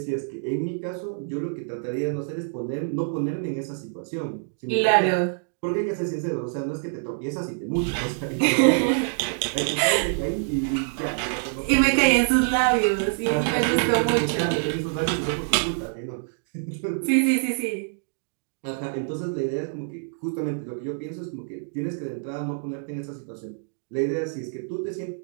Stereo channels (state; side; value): silent; left; digital silence